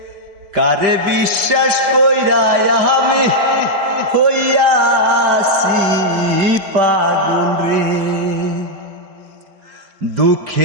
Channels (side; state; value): left; late; 5.1 ms